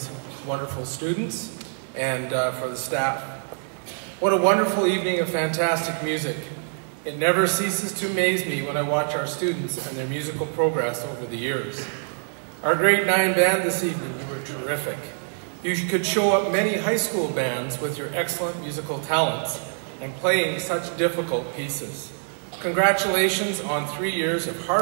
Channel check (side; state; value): left; silent; 62 dB below the other